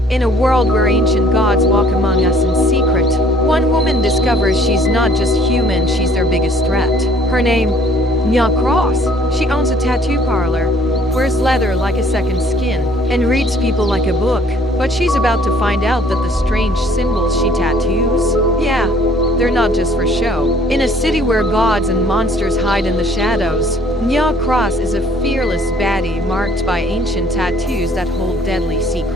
In a world where ancient gods walk among us in secret, one woman discovers she's not just human, she's their biggest threat. Her name, Nyah Cross. She owns a tattoo parlor, wears leather like a second skin, and reads people like a book. But she's about to find out that the strange symbols she tattoos, yeah, they're not just for show. In a city where gods and monsters hide in the shadows, Nyah Cross is a fearless baddie marked by ancient tattoos that hold deadly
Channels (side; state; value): both; normal; correlation 0.58